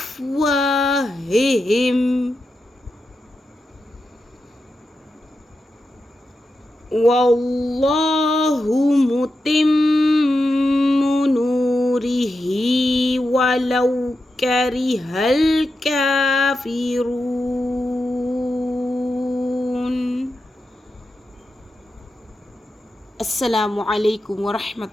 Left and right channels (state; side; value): normal; both; correlation 0.89